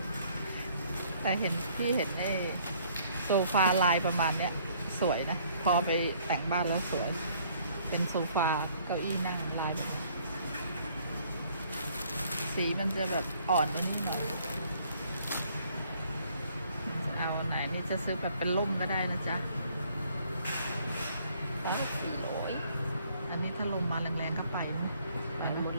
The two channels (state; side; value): inverted; both; correlation -0.62